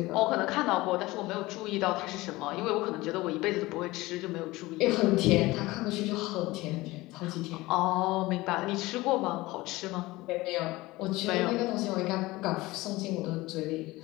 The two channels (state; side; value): quieter; right; 19.9 dB